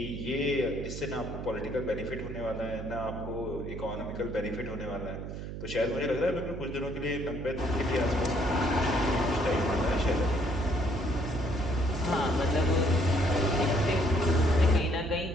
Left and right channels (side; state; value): right; noise; hum, 8 dB below the sound